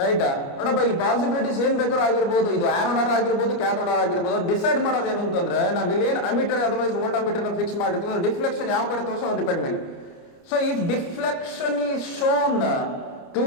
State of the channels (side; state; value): right; late; 29 ms